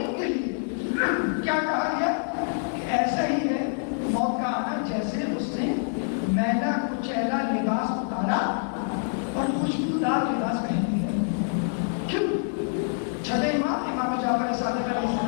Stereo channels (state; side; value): silent; right; digital silence